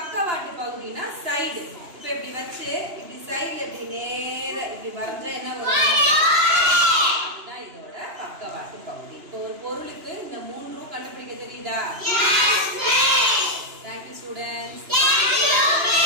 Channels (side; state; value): left; late; 2.9 ms